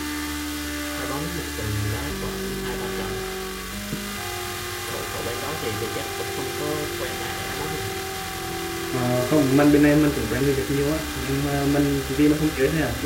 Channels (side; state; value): both; identical; correlation 1.00